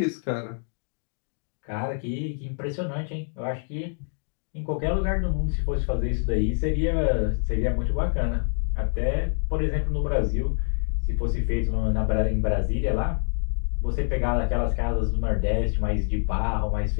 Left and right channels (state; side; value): silent; right; 59 dB below the other